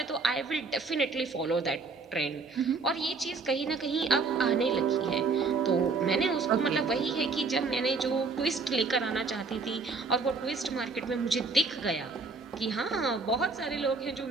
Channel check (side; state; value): left; quieter; 4.2 dB